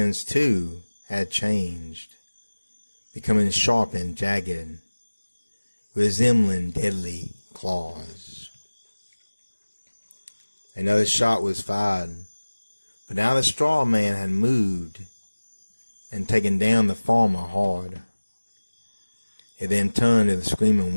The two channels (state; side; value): inverted; both; correlation -1.00